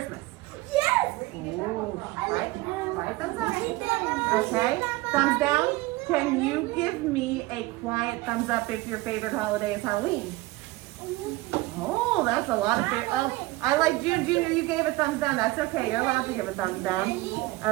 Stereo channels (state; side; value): quieter; left; 20.2 dB